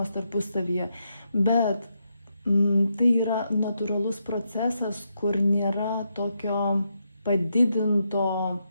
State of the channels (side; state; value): both; inverted; correlation -0.82